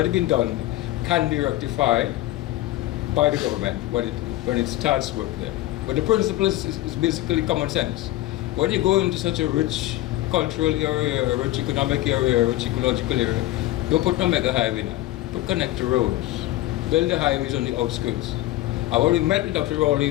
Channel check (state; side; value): quieter; right; 16.1 dB